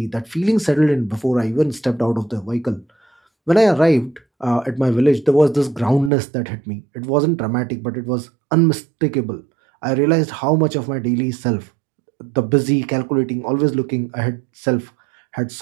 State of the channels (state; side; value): drops out; left; at 6.1 s